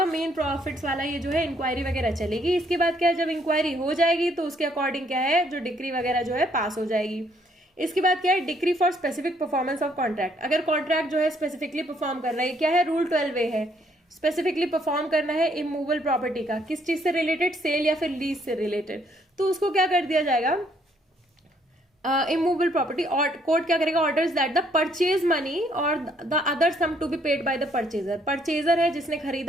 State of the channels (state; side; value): normal; both; correlation 0.68